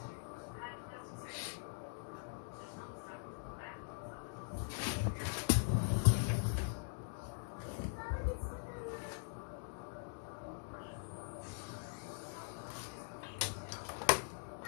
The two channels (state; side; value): silent; right; digital silence